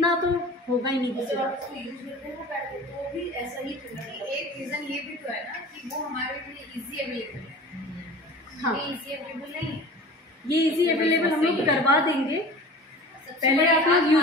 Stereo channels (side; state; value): both; normal; correlation 0.39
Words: तो होगा ही नहीं किसी को। तो भी ऐसा ही एक रीज़न ये भी तो है ना कि वो हमारे लिए इजी अवेलेबल है। हाँ, ये इजी अवेलेबल नहीं, ये इजी अवेलेबल हम लोग करवा देंगे। पहले आप लोग